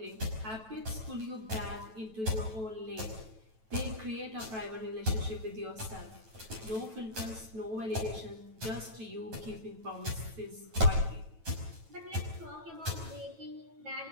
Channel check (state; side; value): late; left; 9.1 ms